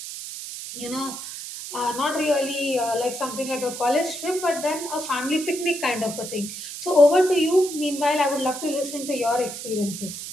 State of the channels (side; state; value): right; noise; hiss, 9 dB below the sound